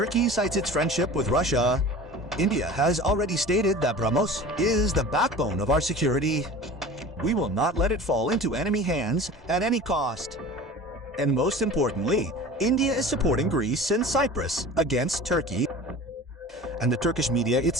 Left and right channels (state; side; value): normal; both; correlation 0.39